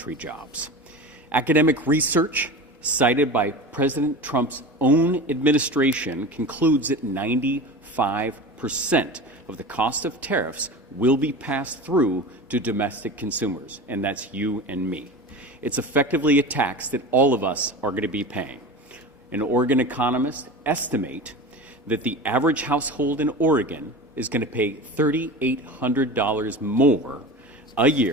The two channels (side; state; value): both; normal; correlation 0.31